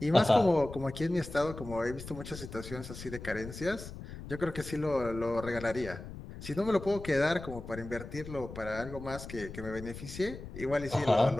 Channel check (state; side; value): noise; left; rumble, 12 dB below the sound